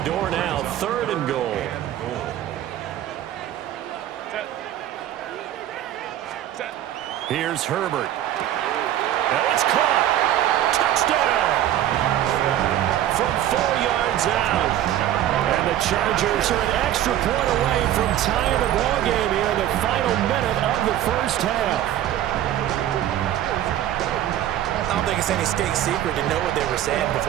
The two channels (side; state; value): left; quieter; 12.2 dB